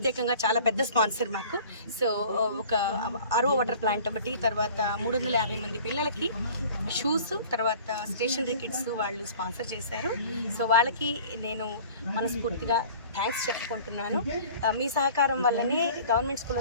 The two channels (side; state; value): both; inverted; correlation -0.46